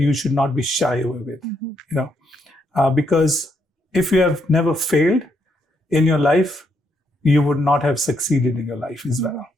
should not be shy away with, because if you have never failed in your life, you would not have succeeded in your life as well.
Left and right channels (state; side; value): normal; both; correlation 0.76